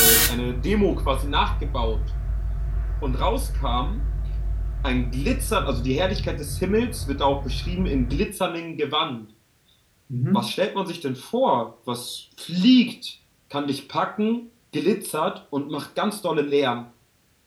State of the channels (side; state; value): both; identical; correlation 1.00